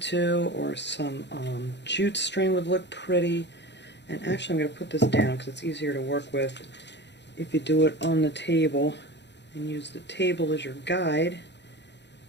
to, or some jute string would look pretty. And actually I'm going to put this down because it's easier to work with if you do it on the table and use the table as your guide,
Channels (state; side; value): late; right; 0.51 ms